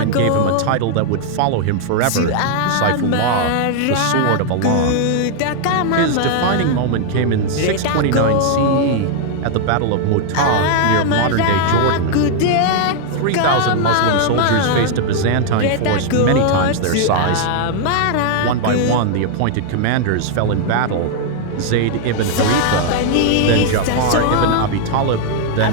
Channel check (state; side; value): different; both; correlation 0.00